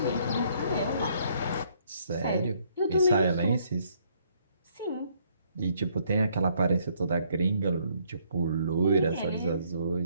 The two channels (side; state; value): both; inverted; correlation -0.67